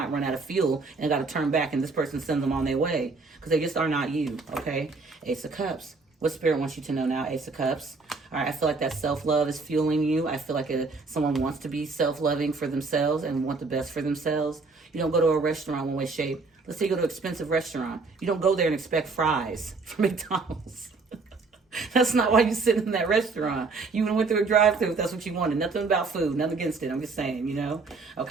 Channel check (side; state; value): left; quieter; 4.1 dB